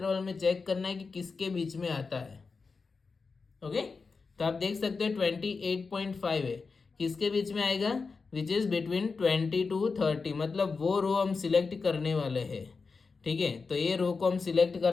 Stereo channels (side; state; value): right; quieter; 4.6 dB